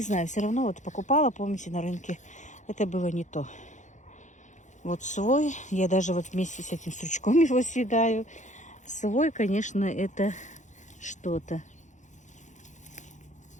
знаю, все равно вот покупала, помните, на рынке. Это было не то. Вот свой, я даже вот вместе с этим стручком его съедаю. Свой, конечно, это что-то.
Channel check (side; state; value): right; late; 0.35 ms